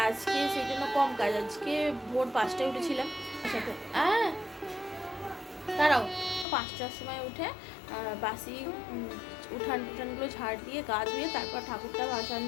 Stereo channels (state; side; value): drops out; right; at 6.5 s